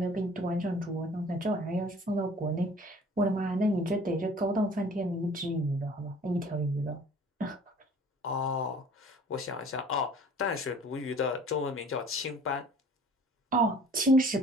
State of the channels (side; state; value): both; normal; correlation 0.50